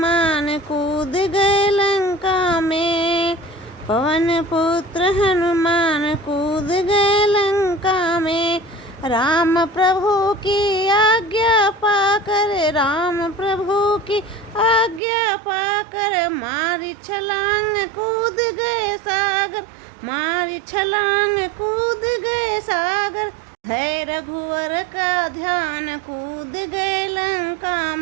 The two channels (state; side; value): drops out; left; at 15.0 s